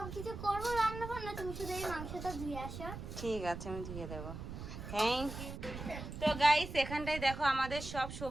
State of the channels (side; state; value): right; noise; rumble, 9 dB below the sound